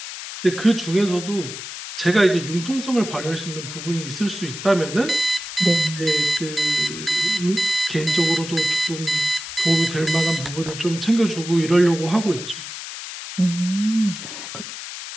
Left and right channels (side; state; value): left; noise; hiss, 9 dB below the sound